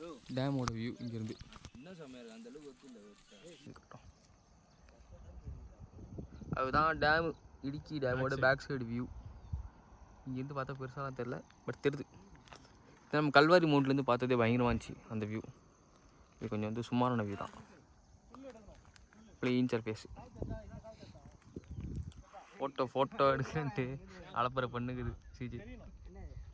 டேமோட வியூ இங்கேருந்து. அதுதான் டேமு, இடுக்கி டேமோட பேக் சைடு வியூ. இங்கேருந்து பார்த்தா பெருசாலாம் தெரில, பட் தெரியுது. நம்ம கல்வாரி மவுண்ட்லேருந்து பார்த்ததே பயங்கரமாக இருந்துச்சு அந்த வியூ. இது கொஞ்சம் வந்து சுமாரான வியூ தான். Clean surface. ஃபோட்டோ எடுக்கன்ட்டு அலப்பறை பண்ணுக்குது சிஜி.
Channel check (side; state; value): both; identical; correlation 1.00